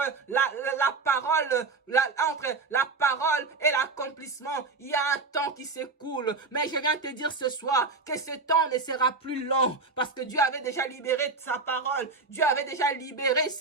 entre la parole et l'accomplissement, il y a un temps qui s'écoule. Mais je viens te dire ce soir que ce temps ne sera plus long parce que Dieu avait déjà libéré sa parole, Dieu avait déjà libéré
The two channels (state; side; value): quieter; left; 4.0 dB